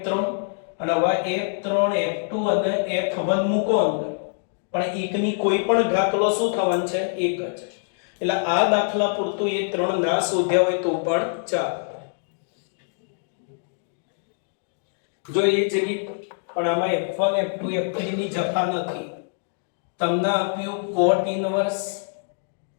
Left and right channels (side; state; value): right; silent; digital silence